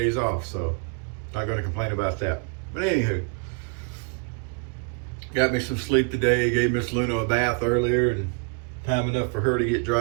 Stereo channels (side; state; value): left; quieter; 33.5 dB